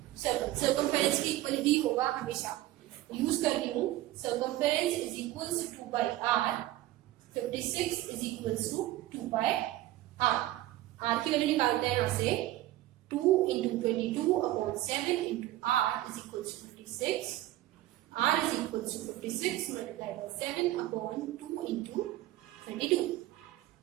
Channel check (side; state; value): left; quieter; 15.5 dB